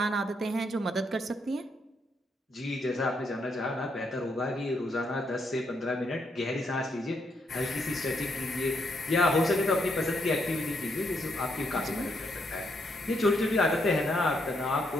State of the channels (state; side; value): normal; both; correlation 0.76